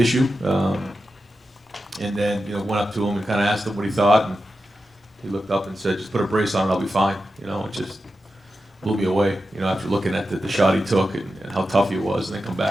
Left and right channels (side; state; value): both; normal; correlation 0.90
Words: issue. And then went up to him and kind of asked him what he thought, and he looked up and said, "Just put a brace on, and I'll be fine." It just blew me away. After looking at the shot he took and how tough he was, and then come